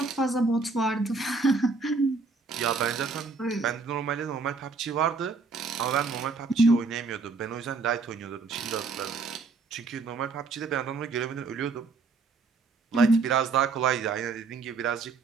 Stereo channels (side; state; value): left; quieter; 4.2 dB